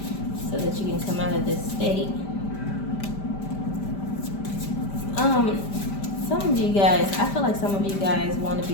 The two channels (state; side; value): late; right; 5.1 ms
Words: so that you can come out of this state. Some of you guys, I feel like some of you guys want to